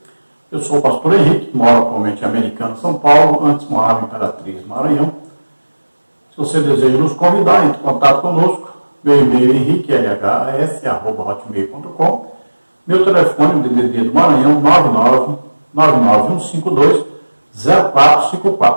Eu sou o pastor Henrique, moro atualmente em Americana, São Paulo, antes morava em Imperatriz, Maranhão. Se você deseja nos convidar, entre em contato conosco. Meu e-mail é henriquelhs@hotmail.com. Meu telefone, DDD do Maranhão,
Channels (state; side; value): inverted; both; correlation -1.00